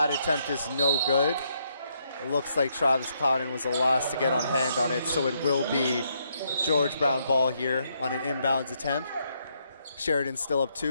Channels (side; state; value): both; inverted; correlation -0.76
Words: attempt is no good. It looks like Travis Clouden was the last to get on hand on it, so it will be George Brown ball here on an inbounds attempt. Sheridan still up